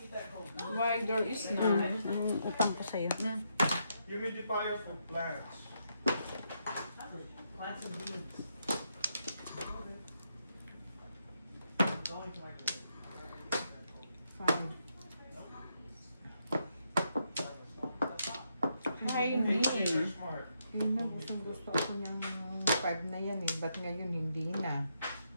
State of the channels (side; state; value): both; inverted; correlation -0.79